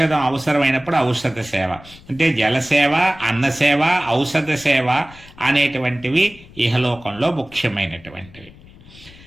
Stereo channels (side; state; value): left; noise; rumble, 22 dB below the sound